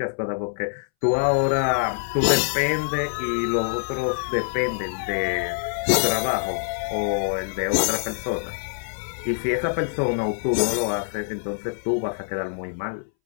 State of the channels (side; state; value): right; silent; 62 dB below the other